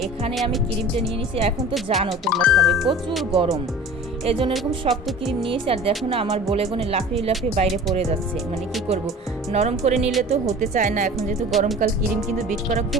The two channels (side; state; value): both; normal; correlation 0.41